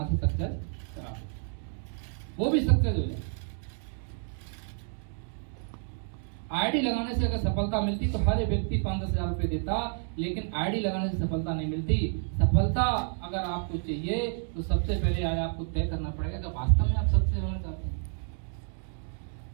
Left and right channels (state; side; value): silent; left; 55 dB below the other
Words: से सक्सेस करा, वो भी सक्सेस हो जाए। आईडी लगाने से अगर सफलता मिलती तो हर व्यक्ति 5-10 हजार रुपये देता, लेकिन आईडी लगाने से सफलता नहीं मिलती। सफलता अगर आपको चाहिए तो सबसे पहले आज आपको तय करना पड़ेगा कि वास्तव में आप सक्सेस होना चाहते हैं।